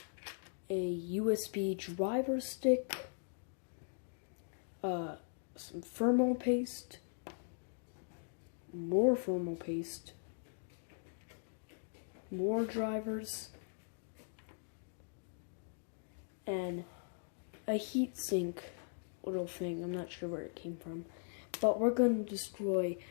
a USB driver stick, some thermal paste, more thermal paste, more drivers, and a heatsink little thing. I'm not sure where it came from, but we're going to destroy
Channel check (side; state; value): right; silent; digital silence